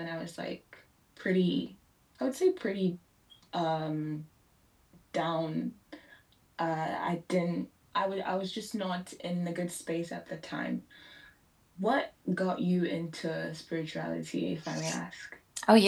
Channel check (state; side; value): identical; both; correlation 1.00